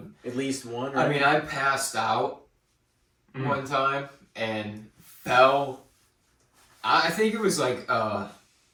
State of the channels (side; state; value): both; identical; correlation 1.00